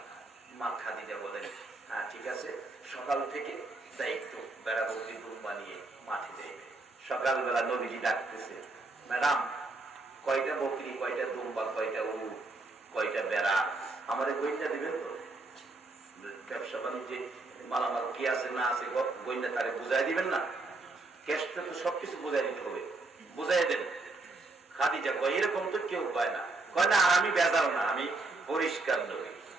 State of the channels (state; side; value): quieter; left; 3.3 dB